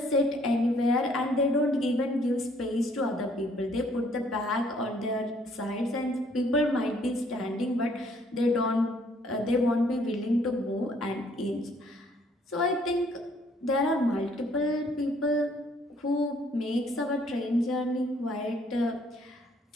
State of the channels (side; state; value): both; normal; correlation 0.63